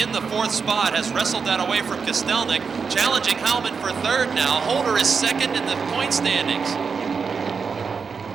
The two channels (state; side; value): quieter; left; 5.5 dB